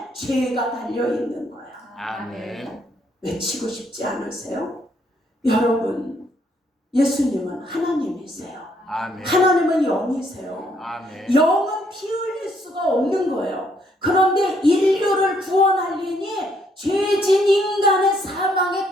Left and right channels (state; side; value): normal; both; correlation 0.70